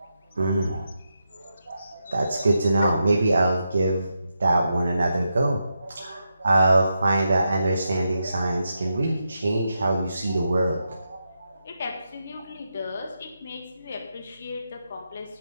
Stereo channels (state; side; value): inverted; both; correlation -0.86